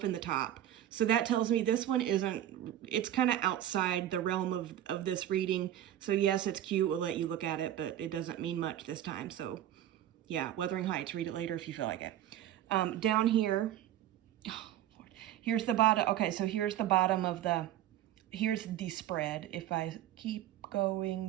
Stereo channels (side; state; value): left; quieter; 12.1 dB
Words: in the top. So that tells me this one it's kind of outside the realm of this reading. So yes, it's cute. We'll let you look at it, but it doesn't mean much this time. So yeah, Wuthering Heights, read it later if you feel like it. Down here, oh, Lord, here's the bottom. Okay, so here's the bottom of here's the spread. If I keep